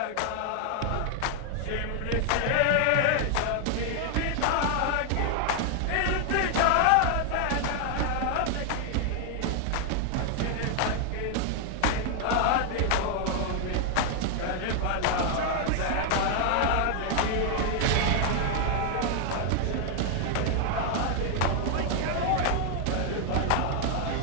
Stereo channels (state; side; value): different; both; correlation 0.00